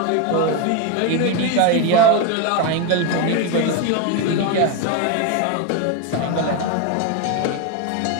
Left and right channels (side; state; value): both; different; correlation 0.02